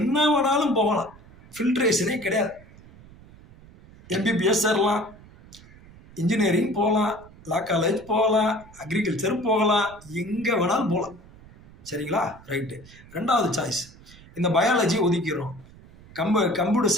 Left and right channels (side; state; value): right; noise; rumble, 22 dB below the sound